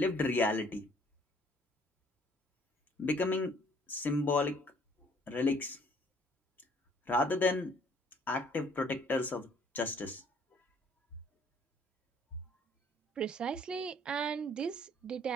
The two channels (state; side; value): normal; both; correlation 0.60